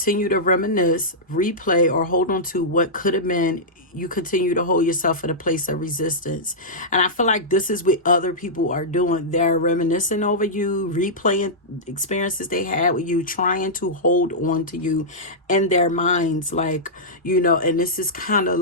to reminisce, replay, or hold on to what could have been, you continue to hold yourself in a place of resistance. And I feel like this is what other people are doing. They're reminiscing over you, replaying experiences they had with you, trying to hold on to you in their minds. Like, you know, and this is kind of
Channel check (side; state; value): both; normal; correlation -0.12